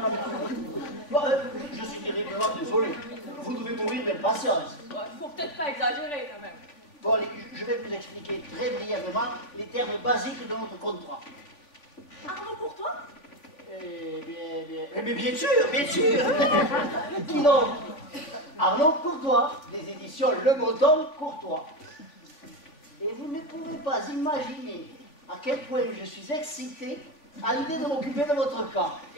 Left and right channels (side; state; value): right; late; 3.4 ms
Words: Bon, je suis terriblement désolé. Vous devez mourir d'impatience. Il faut peut-être pas exagérer quand même. Bon, allez, je vais vous expliquer très brièvement les termes basiques de notre contrat. Arnaud Courtois? Mais bien sûr, bien sûr. Qui donc? Arnaud Courtois, des éditions Le Breton Courtois. Et vous ne pouvez pas imaginer à quel point je suis excité à l'idée de m'occuper de votre cas.